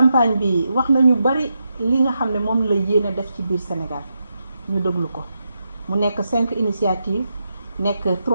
bi wax nañu bari li nga xam ne moom la yéene def ci biir Sénégal ñu déglu ko mu nekk 5 initiatives nekk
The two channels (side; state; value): both; inverted; correlation -0.86